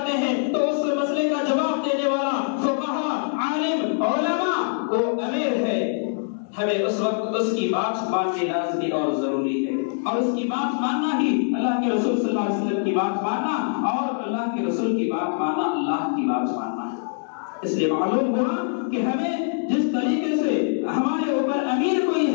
ہیں، تو اس مسئلے کا جواب دینے والا فقہا، عالم، علماء وہ امیر ہے. ہمیں اس وقت اس کی بات ماننی لازمی اور ضروری ہے، اور اس کی بات ماننا ہی اللہ کے رسول صلی اللہ علیہ وسلم کی بات ماننا، اور اللہ کے رسول کی بات ماننا اللہ کی بات ماننا ہے. اس لیے معلوم ہوا کہ ہمیں جس طریقے سے ہمارے اوپر امیر کوئی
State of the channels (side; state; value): right; silent; digital silence